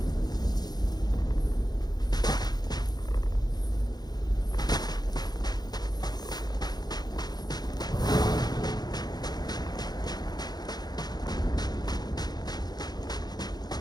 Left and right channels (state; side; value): late; right; 0.19 ms